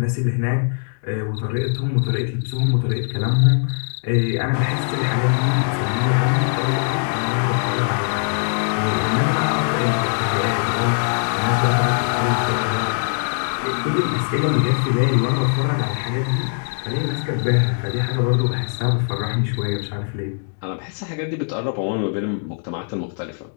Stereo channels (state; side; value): silent; right; digital silence